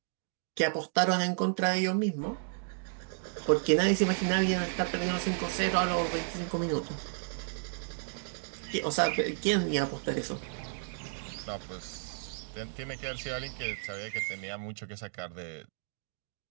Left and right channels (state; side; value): silent; left; digital silence